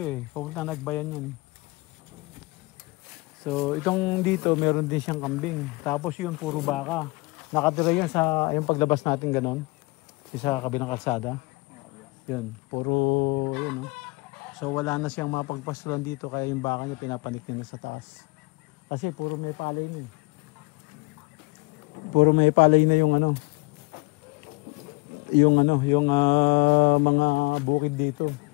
pupunta nagbayan yan. So itong dito meron din siyang kambing. Tapos yun puro baka. Nakatira yun sa yung paglabas natin ganon. Sa kabilang kalsada. Yun. Puro yun. So wala na siyang mapagpasulan dito. Kaya yung baka niya pinapanik niya na sa taas. Kasi puro may palay na Puro may palay na yung yung mga bukid dito.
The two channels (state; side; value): quieter; right; 25.4 dB